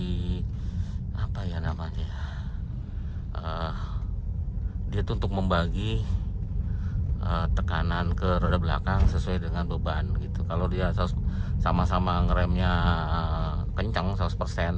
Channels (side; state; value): both; identical; correlation 1.00